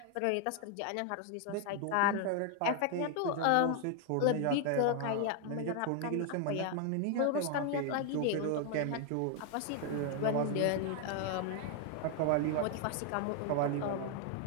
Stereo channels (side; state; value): both; different; correlation 0.00